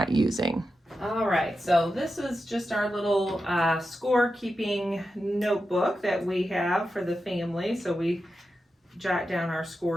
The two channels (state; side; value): normal; both; correlation 0.90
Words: using. All right, so this is just our little score keeping notebook that we have for the family. So we jot down our